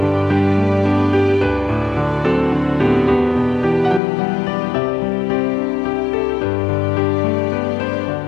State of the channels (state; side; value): drops out; right; at 4.0 s